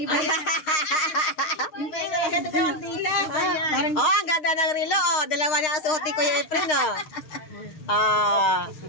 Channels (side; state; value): right; late; 6.5 ms